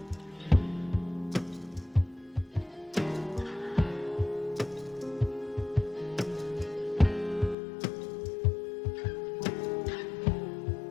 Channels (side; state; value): right; drops out; at 7.6 s